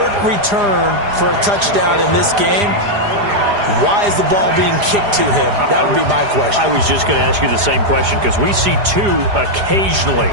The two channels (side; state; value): left; late; 4.9 ms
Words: return for a touchdown in this game. Why is the ball being kicked to him? That would be my question. I was just going to ask you the same question because we see 2 occasionally.